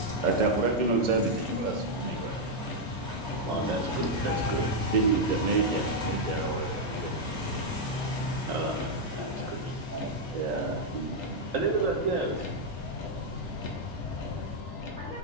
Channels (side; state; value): both; normal; correlation -0.01